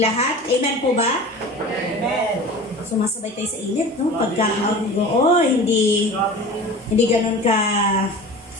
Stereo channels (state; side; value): normal; both; correlation 0.37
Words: Amen po ba? Amen. Sumasabay tayo sa init, no? Hindi ganun